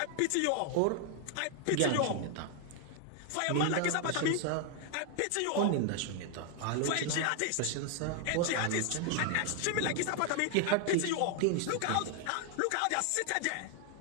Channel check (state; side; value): different; both; correlation 0.00